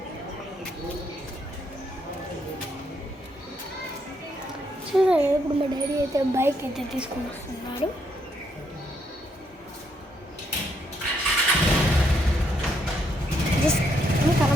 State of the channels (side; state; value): both; normal; correlation 0.74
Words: చూసారు, ఇప్పుడు మా డాడీ అయితే బైక్ అయితే తీసుకొని వస్తున్నాడు.